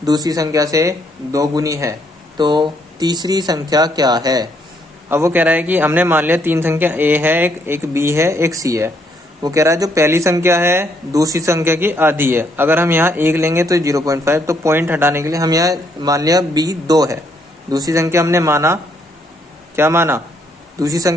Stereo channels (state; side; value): normal; both; correlation 0.71